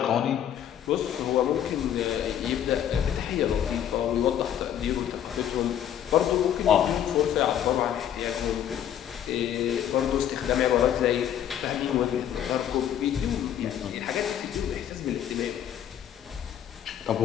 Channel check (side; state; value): right; quieter; 10.1 dB